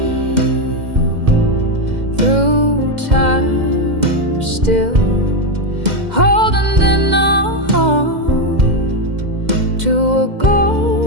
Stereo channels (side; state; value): left; late; 2.1 ms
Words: through time still, holding on to a